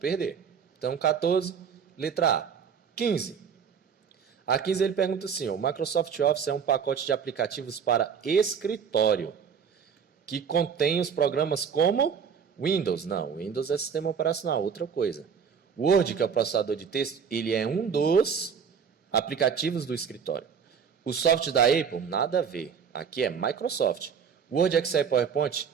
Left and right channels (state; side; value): quieter; left; 6.9 dB